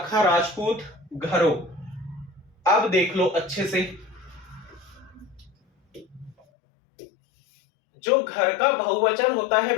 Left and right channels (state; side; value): drops out; right; at 6.4 s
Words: राजपूत घरों। अब देख लो अच्छे से, जो घर का बहुवचन होता है